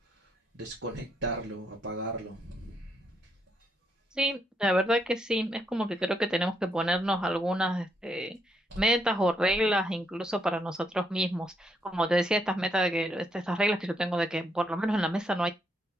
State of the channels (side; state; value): both; normal; correlation 0.76